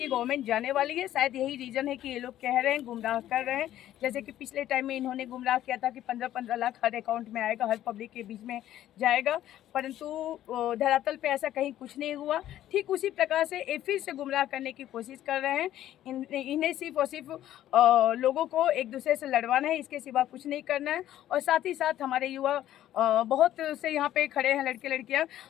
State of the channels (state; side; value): quieter; right; 12.6 dB